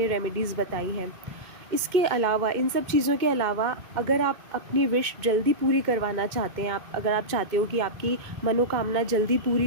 रेमेडीज़ बताई हैं। इसके अलावा, इन सब चीज़ों के अलावा, अगर आप अपनी विश जल्दी पूरी करवाना चाहते हैं, अगर आप चाहते हो कि आपकी मनोकामना जल्दी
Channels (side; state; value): left; late; 2.1 ms